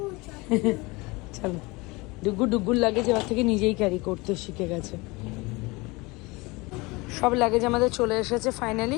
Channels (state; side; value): quieter; right; 24.4 dB